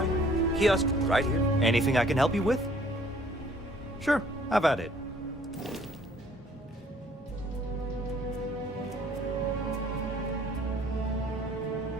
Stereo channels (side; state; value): both; normal; correlation 0.59